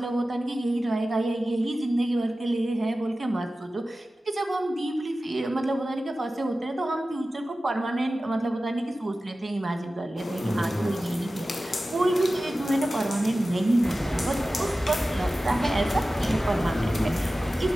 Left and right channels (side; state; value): both; normal; correlation 0.95